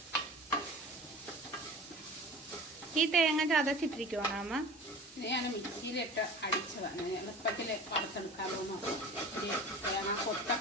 ഈ തേങ്ങ ചതച്ചിട്ടിരിക്കുവാണോ അമ്മ? ഞാൻ മിക്സിയിലിട്ട് അടിച്ചതാണ്. എളുപ്പത്തിൽ വറുത്തെടുക്കാമോ. തേങ്ങ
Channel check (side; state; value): both; normal; correlation 0.38